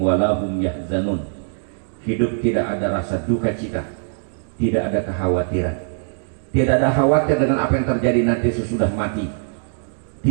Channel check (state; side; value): silent; left; digital silence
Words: lahum yahzanun. Hidup tidak ada rasa duka cita, tidak ada kekhawatiran. Tidak ada khawatir dengan apa yang terjadi nanti sesudah mati.